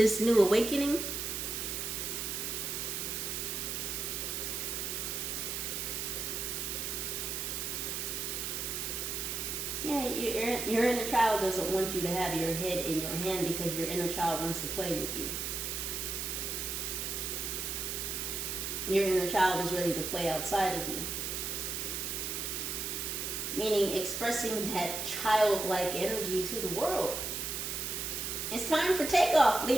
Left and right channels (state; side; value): noise; right; hiss, 3 dB below the sound